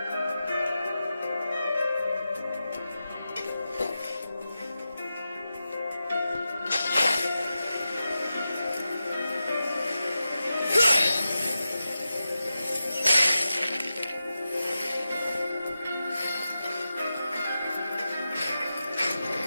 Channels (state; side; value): inverted; both; correlation -0.91